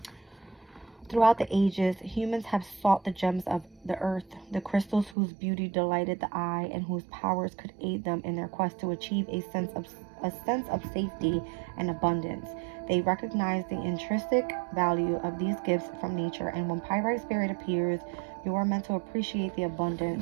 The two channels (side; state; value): left; drops out; at 5.2 s